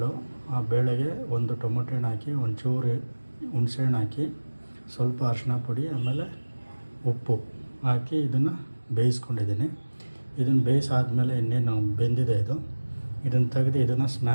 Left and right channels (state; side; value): inverted; both; correlation -1.00